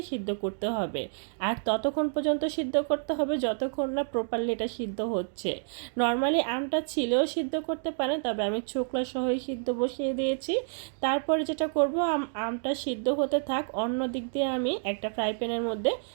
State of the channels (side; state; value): left; silent; digital silence